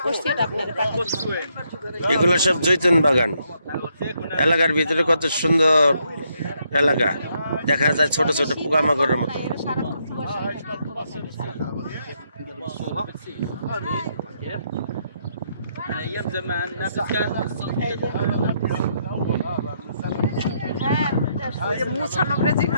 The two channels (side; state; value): both; inverted; correlation -0.75